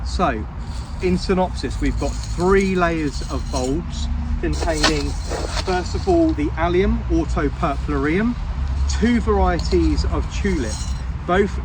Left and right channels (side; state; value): both; identical; correlation 1.00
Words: So in synopsis, we've got 3 layers of bulbs containing, first of all, the Allium, atropurpureum, 2 varieties of tulip, both